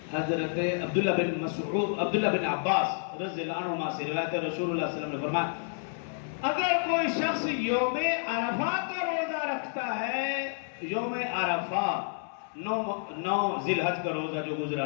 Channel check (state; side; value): silent; right; 58 dB below the other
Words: عبداللہ بن عباس رضی اللہ عنہما سے روایت ہے، رسول اللہ صلی اللہ علیہ وسلم نے فرمایا اگر کوئی شخص یوم عرفہ کا روزہ رکھتا ہے، یوم عرفہ 9 ذی الحج کا روزہ جو گزرا